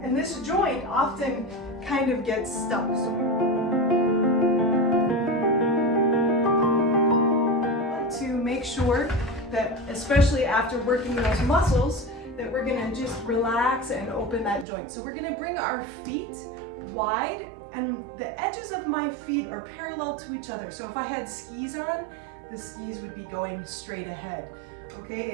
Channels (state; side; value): drops out; left; at 14.7 s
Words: And this joint often kind of gets stuck. To make sure that, especially after working those muscles, that we're gonna just relax and open that joint. So we're gonna bring our feet wide, and the edges of my feet are parallel to each other. So if I had skis on, the skis would be going straight ahead. Okay,